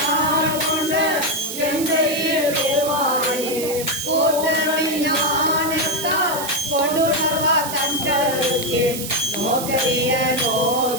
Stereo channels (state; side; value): noise; right; hiss, 7 dB below the sound